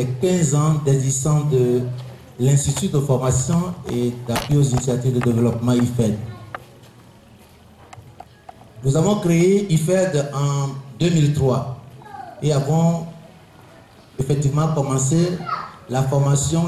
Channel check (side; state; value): both; identical; correlation 1.00